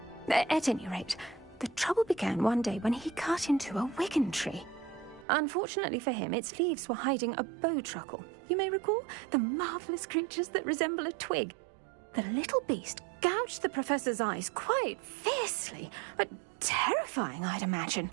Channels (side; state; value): left; drops out; at 5.2 s